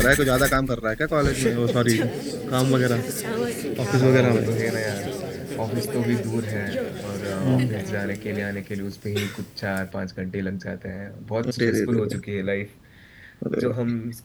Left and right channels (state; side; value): identical; both; correlation 1.00